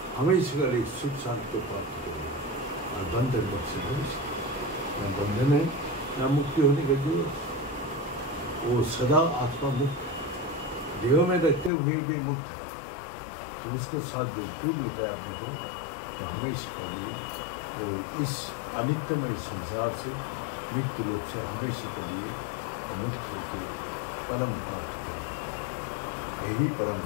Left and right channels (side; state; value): right; drops out; at 11.7 s